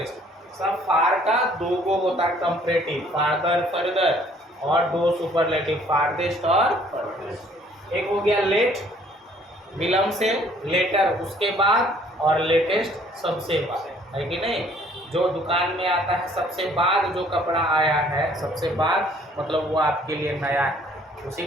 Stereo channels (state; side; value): normal; both; correlation 0.59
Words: सब फार का दो गो होता है कंपैरेटिव, फार्दर, फर्दर, और दो सुपरलेटिव, फारदेस्ट और फर्देस्ट। एक हो गया लेट, विलंब से, लेटर उसके बाद, और लेटेस्ट सबसे बाद, है कि नहीं। जो दुकान में आता है सबसे बाद, जो कपड़ा आया है सबसे बाद, मतलब वो आपके लिए नया है, उसी